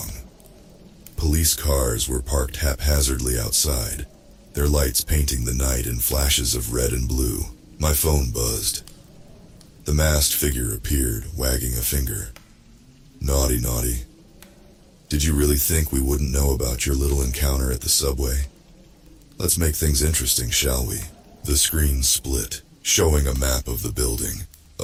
Police cars were parked haphazardly outside, their lights painting the night in flashes of red and blue. My phone buzzed. The masked figure appeared, wagging a finger. Naughty, naughty. Did you really think we wouldn't know about your little encounter at the subway? Let's make things interesting, shall we? The screen split, showing a map of the building.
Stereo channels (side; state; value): both; identical; correlation 1.00